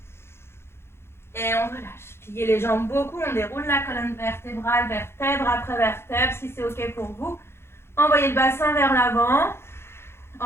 Et on relâche. Pliez les jambes beaucoup. On déroule la colonne vertébrale, vertèbre après vertèbre, si c'est OK pour vous. Envoyez le bassin vers l'avant.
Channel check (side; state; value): right; late; 0.12 ms